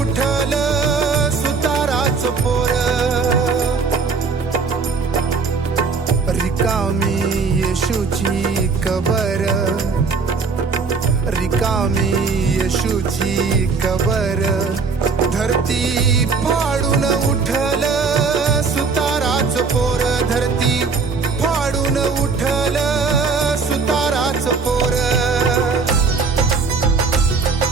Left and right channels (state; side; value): quieter; left; 4.8 dB